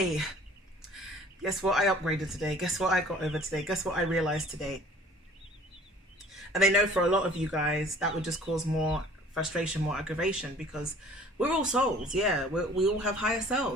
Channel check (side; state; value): both; normal; correlation 0.51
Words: guess what I upgraded today, guess what I got over today, guess what I realized today. And they know for a lot of you guys that would just cause more frustration, more aggravation, because we're all souls. Yeah, we all have higher